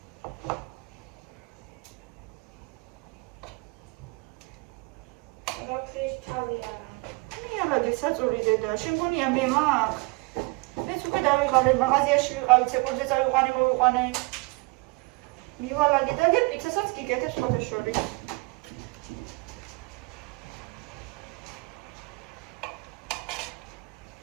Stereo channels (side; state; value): left; quieter; 27.2 dB